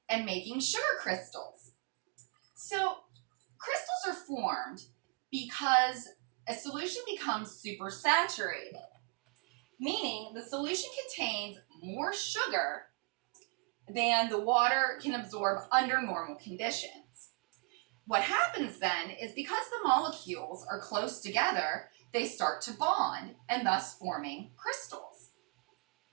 and making sugar crystals. So, crystals are formed because a solution becomes supersaturated, meaning the solution contains more sugar than the water can absorb under normal conditions. What happens then is because the molecules are close together, they start to bond and thus forming crystals.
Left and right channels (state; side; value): quieter; left; 36.4 dB